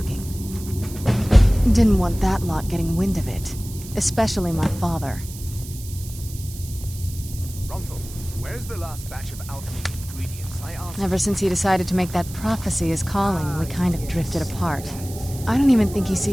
Didn't want that lot getting wind of it. Especially my father. Ronthal, where's the last batch of alchemy ingredients I asked? Ever since he decided to make that prophecy his calling, we kind of drifted apart. I don't even think he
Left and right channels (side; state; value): right; noise; hiss, 15 dB below the sound